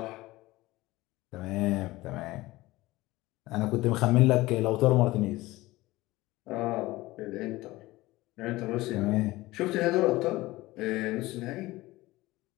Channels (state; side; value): quieter; right; 19.0 dB